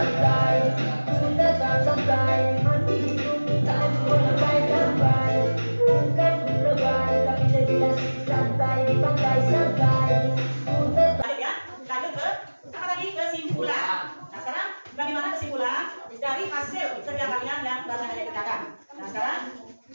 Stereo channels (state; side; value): inverted; both; correlation -1.00